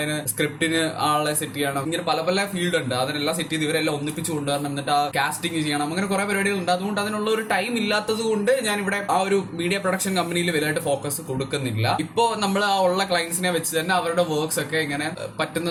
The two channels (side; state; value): both; identical; correlation 1.00